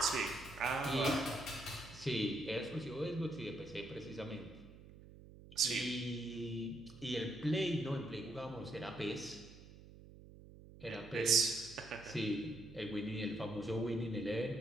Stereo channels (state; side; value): noise; right; hum, 18 dB below the sound